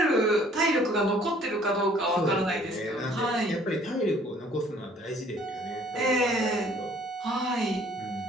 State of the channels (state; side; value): normal; both; correlation 0.57